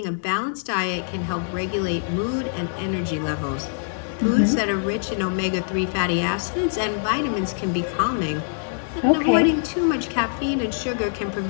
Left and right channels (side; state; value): right; silent; digital silence